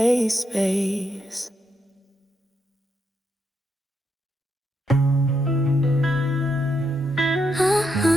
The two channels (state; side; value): normal; both; correlation 0.80